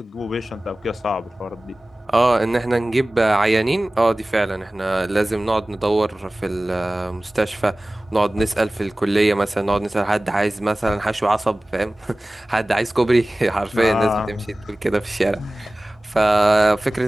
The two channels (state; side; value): normal; both; correlation 0.98